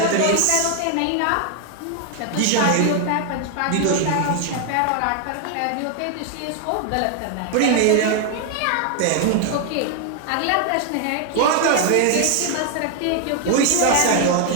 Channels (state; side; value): different; both; correlation 0.00